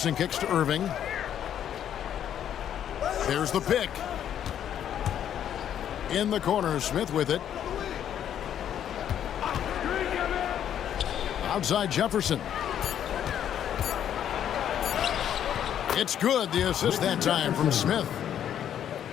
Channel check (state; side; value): quieter; right; 9.9 dB